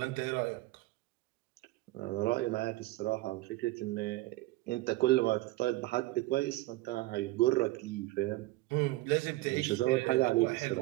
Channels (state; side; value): quieter; left; 19.1 dB